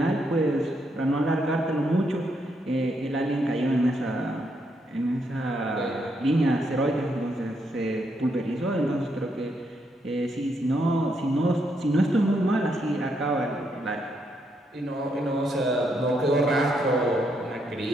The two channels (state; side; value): normal; both; correlation 0.77